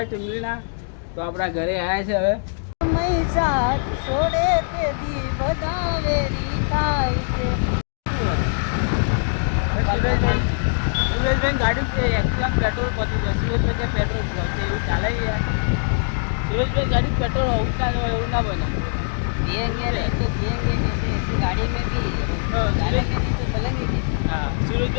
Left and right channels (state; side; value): silent; right; digital silence